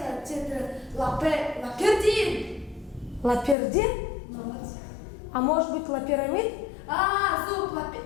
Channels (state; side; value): drops out; right; at 3.6 s